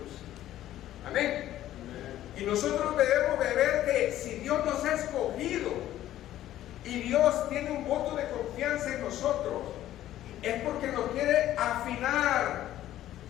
Amén. Y nosotros debemos de ver que si Dios nos ha escogido y Dios tiene un voto de confianza en nosotros, es porque nos quiere afinar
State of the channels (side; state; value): right; quieter; 13.2 dB